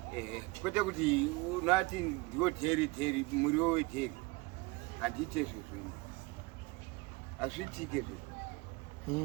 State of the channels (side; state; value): left; quieter; 24.1 dB